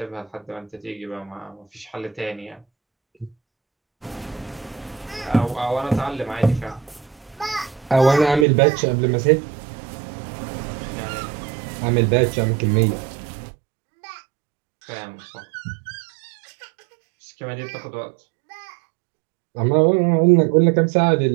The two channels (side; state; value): left; drops out; at 8.5 s